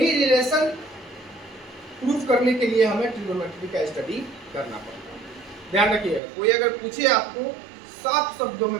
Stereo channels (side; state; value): left; drops out; at 6.2 s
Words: रिलेशन प्रूफ करने के लिए हमें ट्रिगोनोमेट्री का स्टडी करना पड़ता है। ध्यान रखिएगा, कोई अगर पूछे आपको, साफ शब्दों